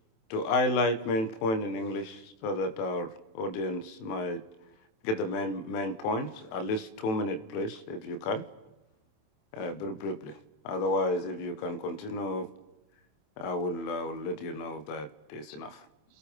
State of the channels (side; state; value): right; late; 27 ms